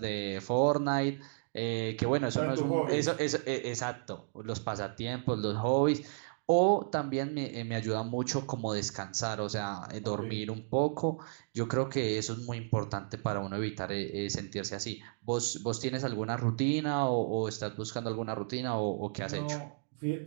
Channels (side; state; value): left; silent; digital silence